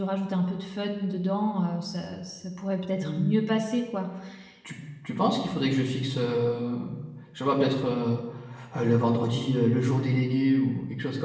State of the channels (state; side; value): identical; both; correlation 1.00